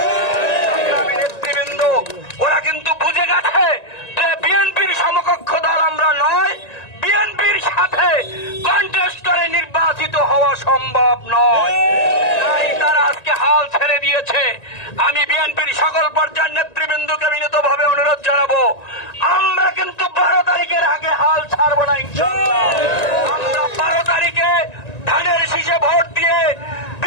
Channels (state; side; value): late; right; 1.9 ms